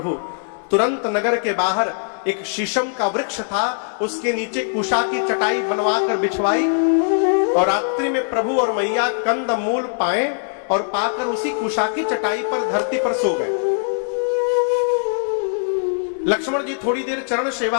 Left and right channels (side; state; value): right; silent; digital silence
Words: तुरंत नगर के बाहर एक शीशम का वृक्ष था, उसके नीचे कुशा की चटाई बनवा कर बिछवाई और रात्रि में प्रभु और मैया कंद मूल पाए और पाकर उसी कुशा की चटाई पर धरती पर सो गए। लक्ष्मण जी थोड़ी देर चरण